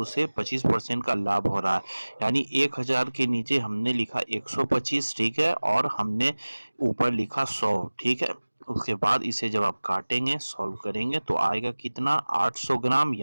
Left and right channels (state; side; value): inverted; both; correlation -1.00